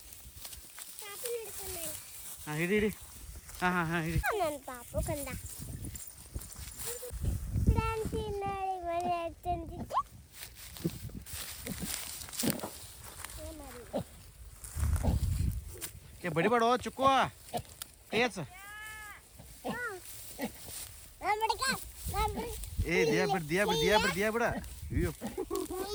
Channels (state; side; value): identical; both; correlation 1.00